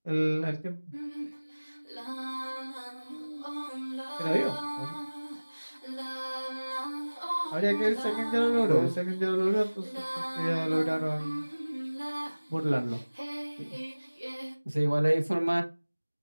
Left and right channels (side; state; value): both; inverted; correlation -1.00